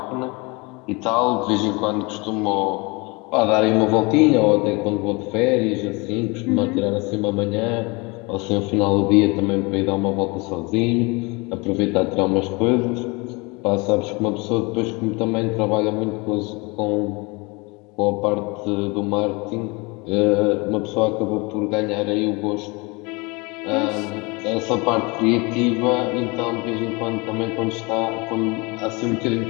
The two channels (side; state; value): right; quieter; 27.3 dB